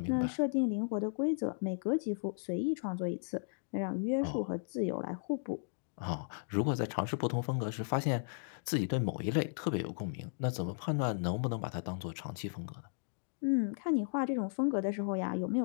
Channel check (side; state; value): right; silent; digital silence